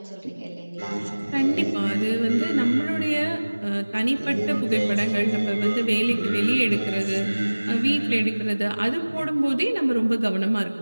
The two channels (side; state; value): both; inverted; correlation -1.00